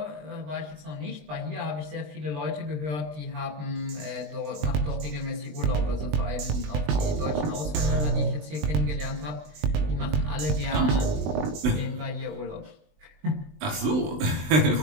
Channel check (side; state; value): left; late; 20 ms